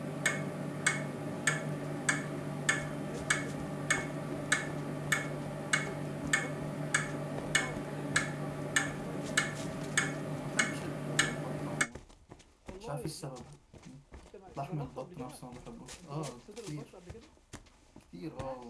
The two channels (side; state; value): both; identical; correlation 1.00